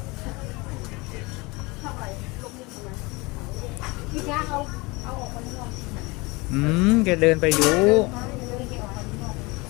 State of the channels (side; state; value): right; quieter; 24.8 dB